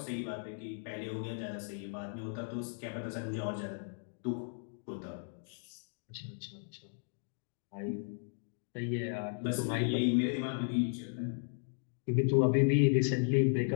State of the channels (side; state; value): right; silent; digital silence